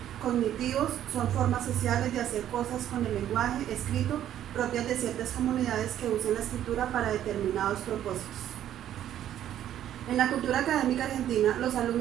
cognitivos, son formas sociales de hacer cosas con el lenguaje escrito propias de ciertas comunidades que usan la escritura para determinados propósitos. En la cultura académica argentina, los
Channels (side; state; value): left; quieter; 11.3 dB